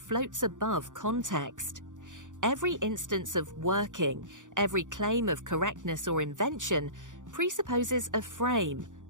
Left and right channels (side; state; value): left; late; 0.87 ms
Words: above context. Every instance of working, every claim of correctness or invention presupposes a frame,